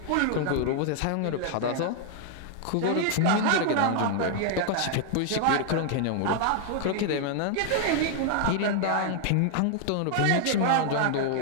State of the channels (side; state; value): both; different; correlation 0.00